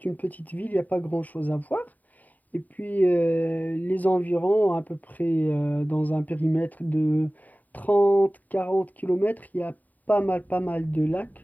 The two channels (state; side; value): late; right; 0.080 ms